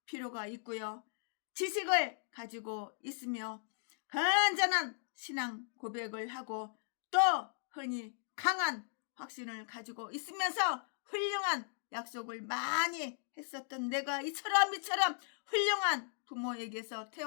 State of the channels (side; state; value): right; silent; digital silence